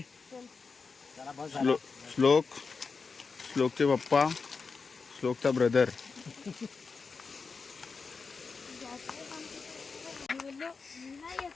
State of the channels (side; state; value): right; quieter; 4.8 dB